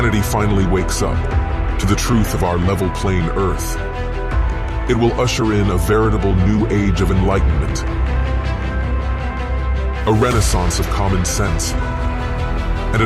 finally wakes up to the truth of our level plane Earth, it will usher in a veritable new age of enlightenment, a renaissance of common sense, and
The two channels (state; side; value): identical; both; correlation 1.00